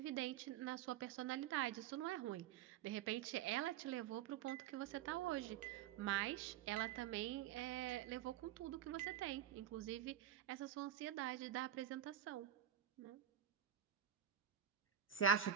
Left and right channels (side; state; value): left; quieter; 9.7 dB